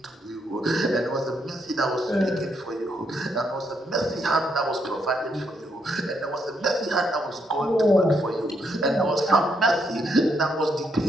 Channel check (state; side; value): normal; both; correlation 0.76